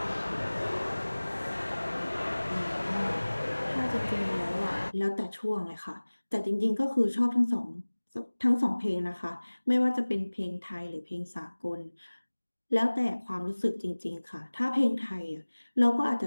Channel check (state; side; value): inverted; both; correlation -1.00